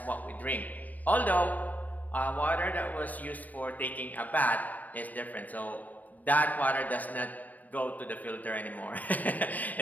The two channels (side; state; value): right; late; 0.078 ms